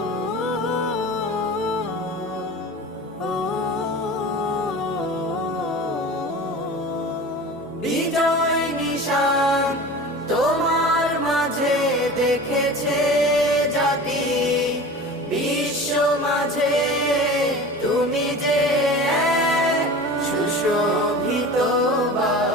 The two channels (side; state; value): both; normal; correlation 0.36